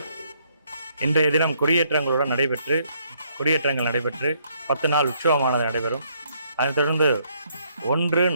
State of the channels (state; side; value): inverted; both; correlation -0.70